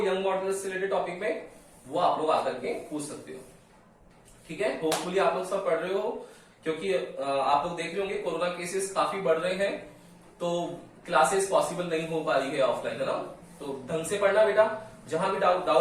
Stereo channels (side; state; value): both; identical; correlation 1.00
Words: मॉडुलस से रिलेटेड टॉपिक में, वो आप लोग आकर के पूछ सकते हो। ठीक है, होपफुली आप लोग सब पढ़ रहे हो, क्योंकि आप लोग देख रहे होंगे कोरोना केसेस काफी बढ़ रहे हैं, तो क्लासेस पॉसिबल नहीं हो पा रही है ऑफलाइन, है ना। तो ढंग से पढ़ना बेटा, जहां भी